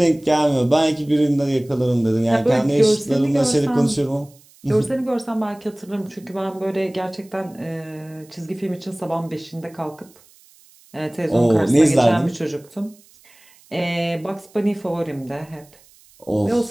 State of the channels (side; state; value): right; noise; hiss, 28 dB below the sound